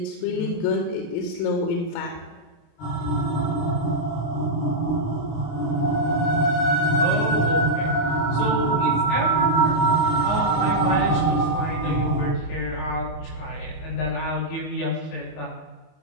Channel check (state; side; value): late; right; 27 ms